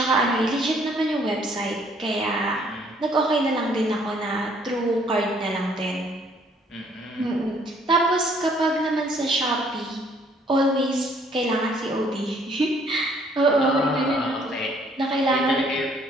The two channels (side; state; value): both; normal; correlation 0.63